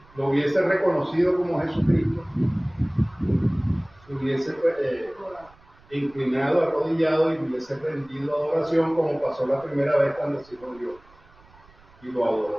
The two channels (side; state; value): right; noise; rumble, 27 dB below the sound